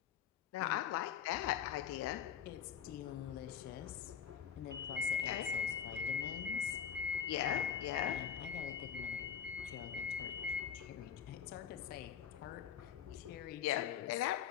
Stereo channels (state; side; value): quieter; right; 8.4 dB